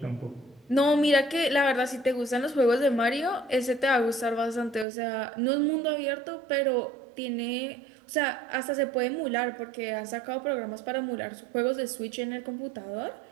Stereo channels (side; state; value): left; drops out; at 4.9 s